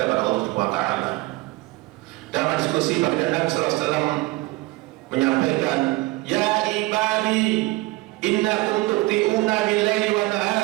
kepada Allah Subhanahu wa taala. Dalam diskusi baginda Nabi sallallahu alaihi wasallam menyampaikan, "Ya ibadi, innakum tu'tiuna bil-laili wan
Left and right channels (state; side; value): quieter; left; 20.7 dB